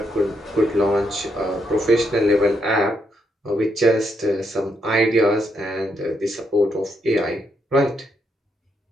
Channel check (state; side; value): normal; both; correlation 0.78